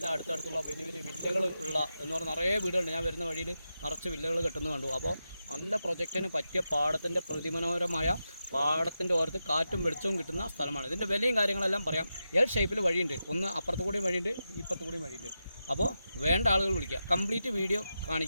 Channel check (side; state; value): both; inverted; correlation -0.89